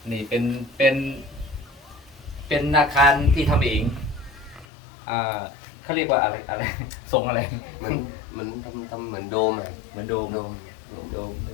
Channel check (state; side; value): drops out; right; at 4.7 s